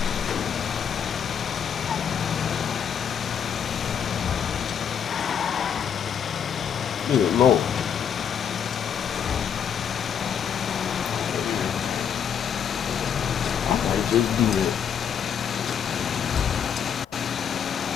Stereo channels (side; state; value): right; quieter; 8.0 dB